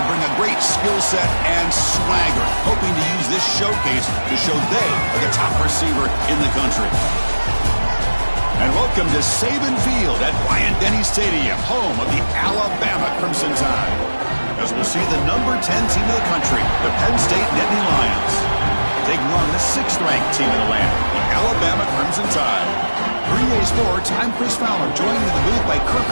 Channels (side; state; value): both; inverted; correlation -1.00